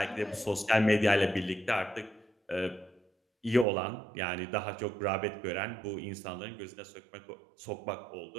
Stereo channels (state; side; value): drops out; left; at 3.7 s